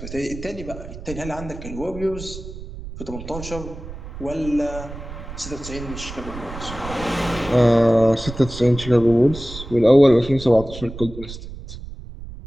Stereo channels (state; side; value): noise; right; rumble, 12 dB below the sound